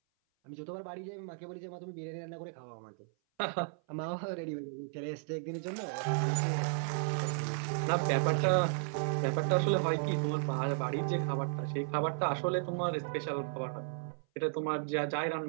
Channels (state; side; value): silent; left; 55 dB below the other